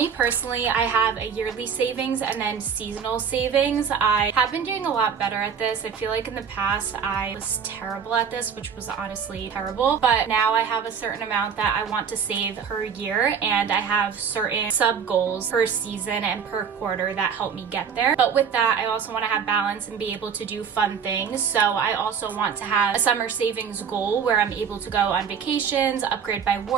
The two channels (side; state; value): left; quieter; 6.9 dB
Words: personally, I have a yearly savings and then seasonal savings. I have been doing a lot better at this. I feel like in the past I was terrible at this, which was honestly terrible, but now I have a certain amount that I want to save per year, and I have certain sub goals per season and per quarter that help me get there. But with that, I also want to have balance and be able to do fun things. So I also want to have a summer savings goal where I'm able to go on vacations, upgrade my